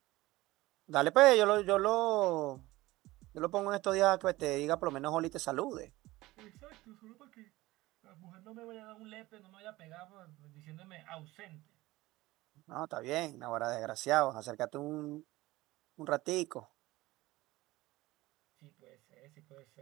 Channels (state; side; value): quieter; left; 18.8 dB